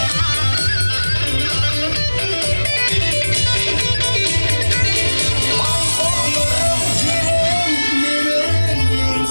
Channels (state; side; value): inverted; both; correlation -1.00